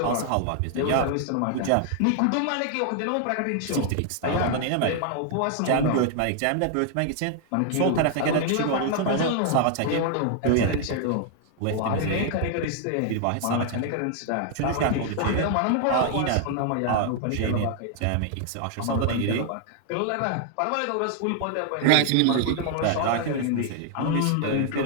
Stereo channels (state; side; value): different; both; correlation 0.00